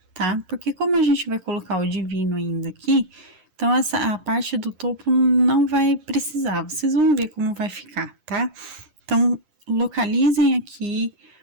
tá? Porque como a gente vai colocar o divino ainda aqui, então a parte do topo não vai precisar, vocês vão ver como vai ficar, tá? Então, localizem aqui,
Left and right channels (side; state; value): left; late; 11 ms